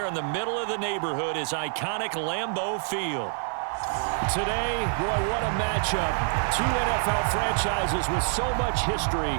in the middle of the neighborhood is iconic Lambeau Field. Today, boy, what a matchup. Two NFL franchises with so much history,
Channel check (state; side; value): silent; left; 60 dB below the other